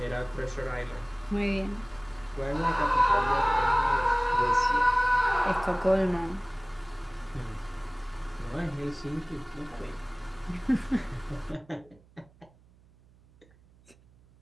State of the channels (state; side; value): noise; right; hum, 28 dB below the sound